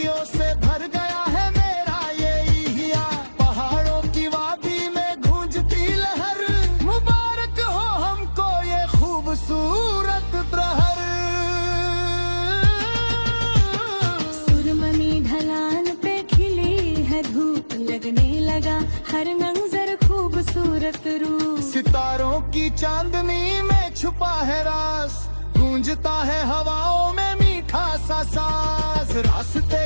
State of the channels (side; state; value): both; inverted; correlation -1.00